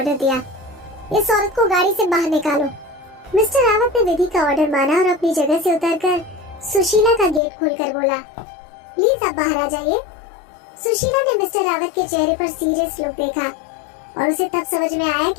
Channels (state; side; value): drops out; right; at 7.4 s